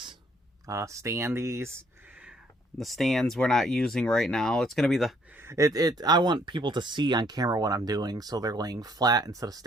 standees. The stands we're not using right now. It's going to be I want people to see on camera what I'm doing, so they're laying flat instead of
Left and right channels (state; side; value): normal; both; correlation 0.65